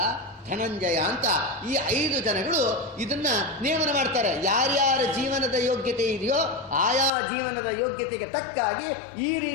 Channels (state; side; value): drops out; right; at 7.1 s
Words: ಧನಂಜಯ ಅಂತ ಈ 5 ಜನಗಳು ಇದನ್ನ ನೇಮನ ಮಾಡ್ತಾರೆ. ಯಾರ್ಯಾರ ಜೀವನದ ಯೋಗ್ಯತೆ ಇದೆಯೋ ಆಯಾ ಜೀವನದ ಯೋಗ್ಯತೆಗೆ ತಕ್ಕಾಗಿ ಈ